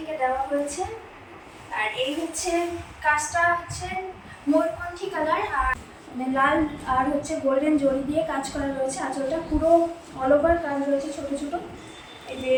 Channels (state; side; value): identical; both; correlation 1.00